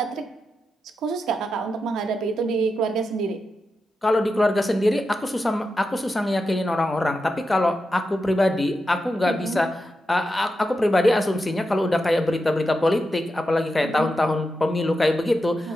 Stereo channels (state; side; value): normal; both; correlation 0.88